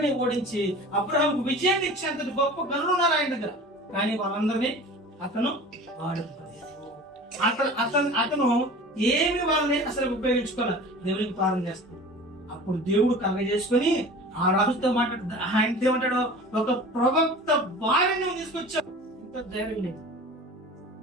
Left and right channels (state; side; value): normal; both; correlation 0.39